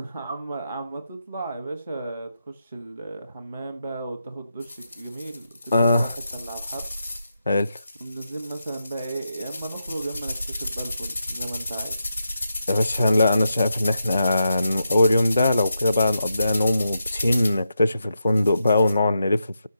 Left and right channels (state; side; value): inverted; both; correlation -0.86